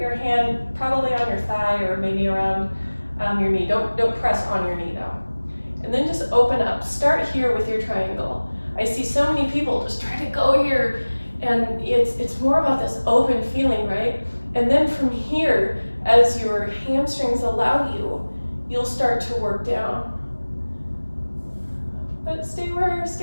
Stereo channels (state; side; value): inverted; both; correlation -1.00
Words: hand probably on your thigh or maybe around your knee. Don't press on your knee though. And then just open up, start here with your triangle. I see so many people just try to go here, and it's more about this open feeling, right? And then from here, as your hamstrings allow you, you'll start to work down. But stay where